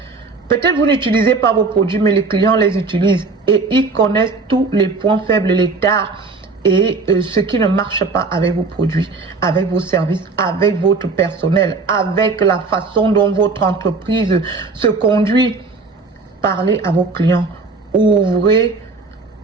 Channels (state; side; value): quieter; left; 4.1 dB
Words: Peut-être vous n'utilisez pas vos produits, mais les clients les utilisent. Et ils connaissent tous les points faibles, les tares et ce qui ne marche pas avec vos produits, avec vos services, avec votre personnel, avec la façon dont votre entreprise se conduit. Parlez à vos clients. Ouvrez